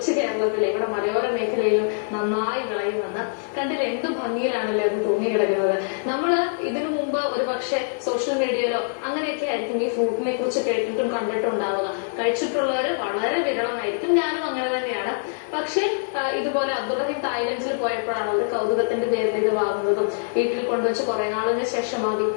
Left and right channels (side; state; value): right; silent; digital silence